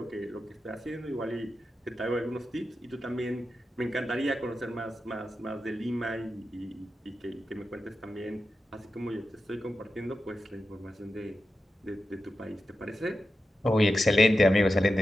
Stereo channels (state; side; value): normal; both; correlation 0.90